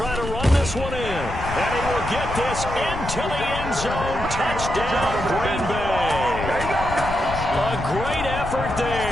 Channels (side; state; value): left; noise; rumble, 7 dB below the sound